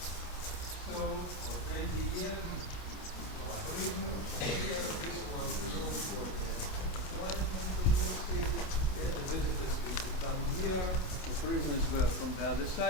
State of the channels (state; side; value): late; right; 27 ms